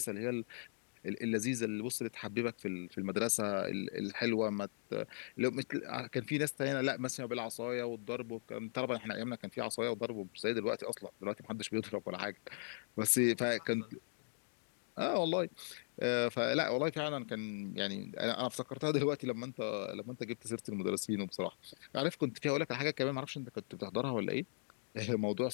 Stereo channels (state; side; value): silent; right; digital silence